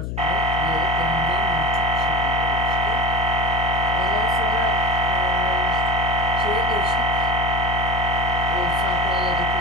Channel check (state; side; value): noise; left; hum, 4 dB below the sound